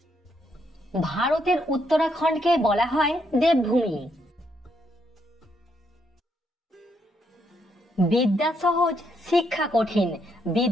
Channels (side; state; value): both; normal; correlation 0.75